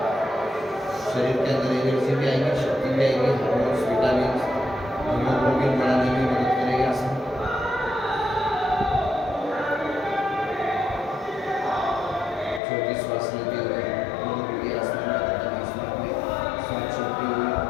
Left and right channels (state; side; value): drops out; right; at 12.6 s